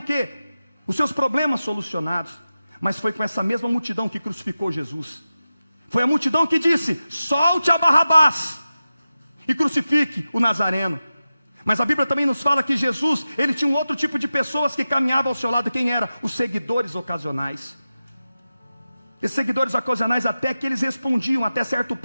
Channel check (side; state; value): both; inverted; correlation -0.94